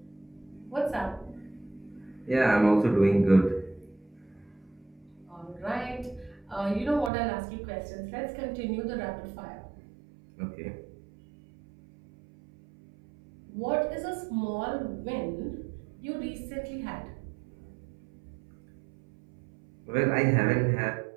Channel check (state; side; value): drops out; left; at 7.1 s